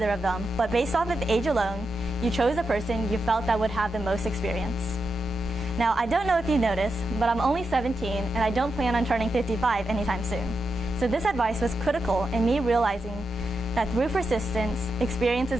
of them, but based off of age alone, you chose the person you felt that would have the most experience. Now, I don't know if you noticed, but I'm only 17 and I don't plan on turning 55 anytime soon. So this advice was critical in me realizing that through persistence, experience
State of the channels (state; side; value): normal; both; correlation 0.87